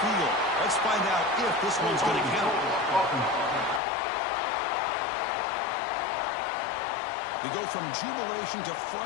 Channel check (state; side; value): drops out; right; at 3.8 s